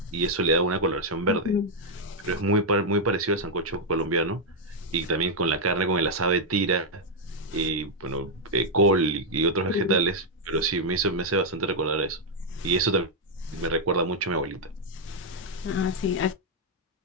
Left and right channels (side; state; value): both; normal; correlation -0.02